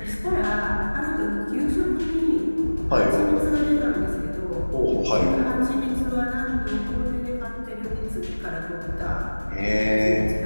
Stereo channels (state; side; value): inverted; both; correlation -1.00